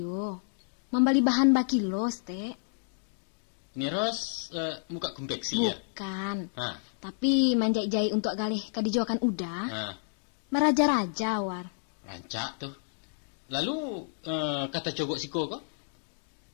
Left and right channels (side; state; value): right; silent; digital silence